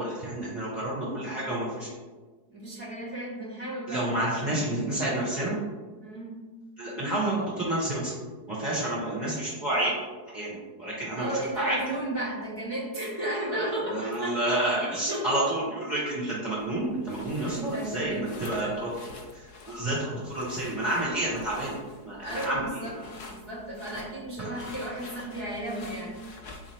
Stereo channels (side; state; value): right; late; 4.7 ms